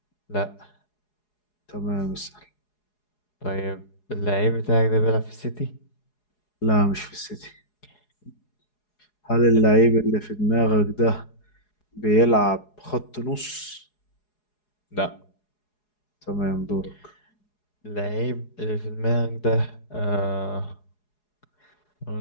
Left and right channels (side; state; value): right; late; 4.8 ms